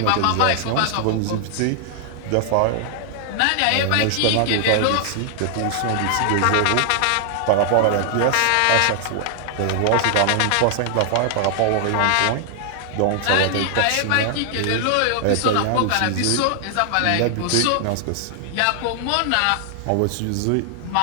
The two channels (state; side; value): different; both; correlation 0.00